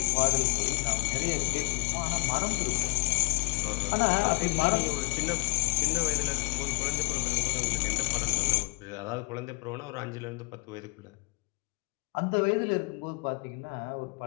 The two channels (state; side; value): quieter; right; 31.7 dB